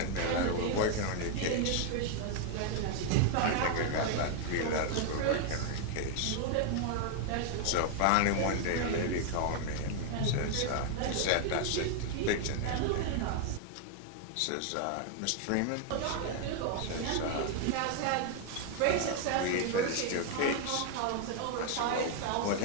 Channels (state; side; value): different; both; correlation 0.00